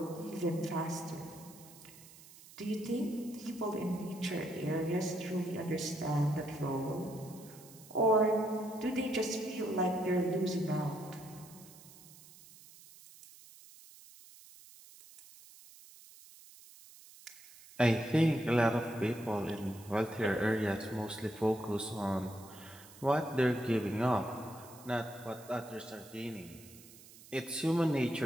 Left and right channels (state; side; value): noise; right; hiss, 20 dB below the sound